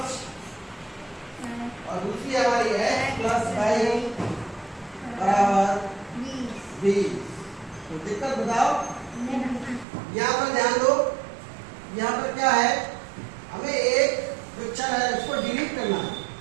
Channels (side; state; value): left; drops out; at 9.9 s